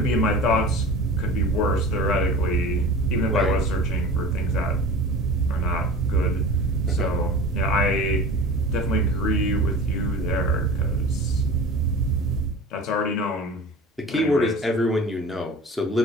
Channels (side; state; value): both; normal; correlation 0.37